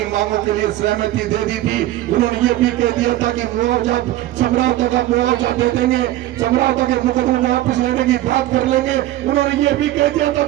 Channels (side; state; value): left; quieter; 15.1 dB